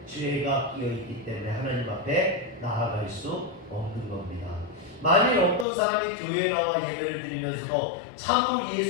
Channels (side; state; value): right; drops out; at 5.7 s